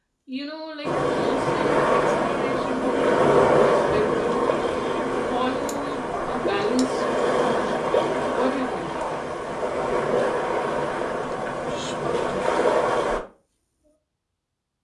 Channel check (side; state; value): both; identical; correlation 1.00